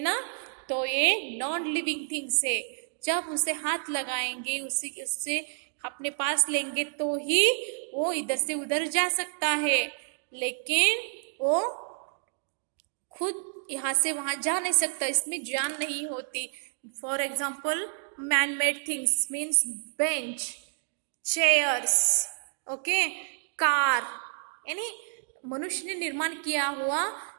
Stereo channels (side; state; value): left; silent; digital silence